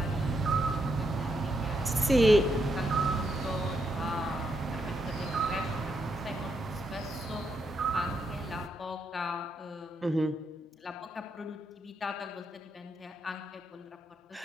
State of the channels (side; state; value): both; normal; correlation 0.80